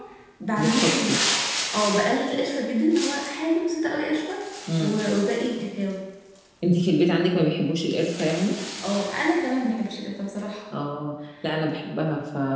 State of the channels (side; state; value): both; identical; correlation 1.00